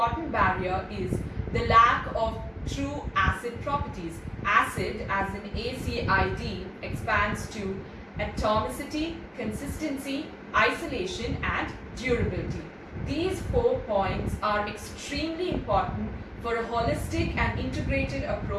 barrier is the lack of true ACID properties. ACID, as in ACID, expands to atomicity, consistency, isolation, and durability. These 4 points are extremely important for a holistic and integrated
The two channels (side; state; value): both; identical; correlation 1.00